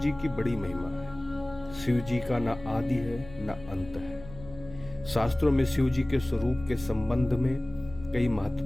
की बड़ी महिमा है। शिव जी का ना आदि है ना अंत है। शास्त्रों में शिव जी के स्वरूप के संबंध में कई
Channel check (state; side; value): noise; left; hum, 16 dB below the sound